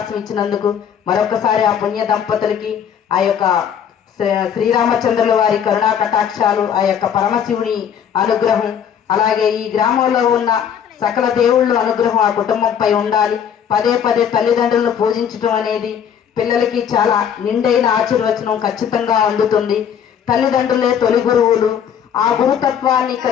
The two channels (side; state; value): right; quieter; 8.5 dB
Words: ఇచ్చినందుకు మరొకసారి ఆ పుణ్య దంపతులకి ఆ యొక్క శ్రీరామచంద్రుల వారి కరుణా కటాక్షాలు, ఆ యొక్క పరమశివుని అనుగ్రహం, అలాగే ఈ గ్రామంలో ఉన్న సకల దేవుళ్ళ అనుగ్రహం ఆ కుటుంబంపై ఉండాలి. పదే పదే తల్లిదండ్రులను పూజించడం అనేది పిల్లలకి చాలా నిండైన ఆశీర్వచనం ఖచ్చితంగా అందుతుంది. తల్లిదండ్రులే తొలి గురువులు. ఆ గురుతత్వాన్ని